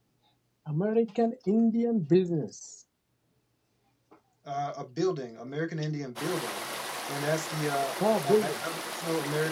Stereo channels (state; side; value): identical; both; correlation 1.00